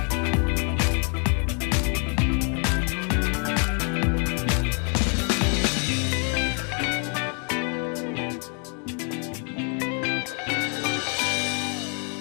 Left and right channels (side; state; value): right; quieter; 39.1 dB